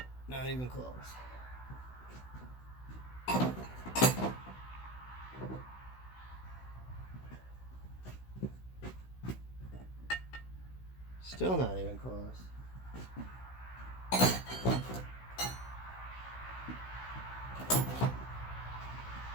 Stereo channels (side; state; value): right; late; 16 ms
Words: not even close. Still not even close.